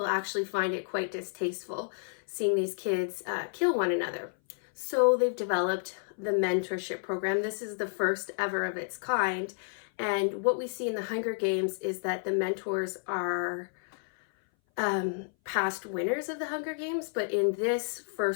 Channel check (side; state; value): right; silent; 57 dB below the other